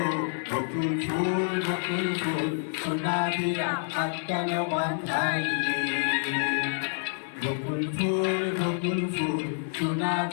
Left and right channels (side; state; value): right; silent; digital silence